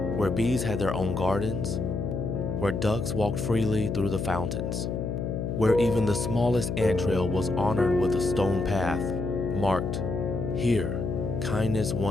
Where bees had their own gardens, where ducks walked freely through the fountains, where even the smallest ant trail was honored with a stone path marked, "Here, kindness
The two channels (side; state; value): left; noise; hum, 2 dB below the sound